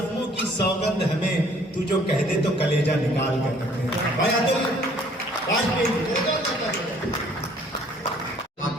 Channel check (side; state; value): both; normal; correlation 0.58